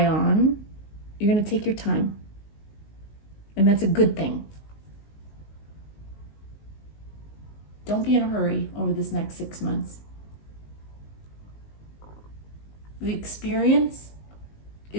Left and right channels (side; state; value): right; late; 19 ms